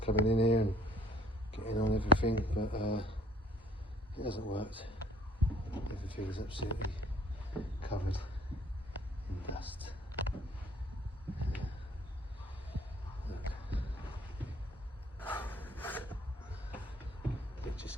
coming in here and getting on everything, but it hasn't worked. Everything is absolutely covered in dust. Look. It just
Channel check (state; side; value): normal; both; correlation 0.55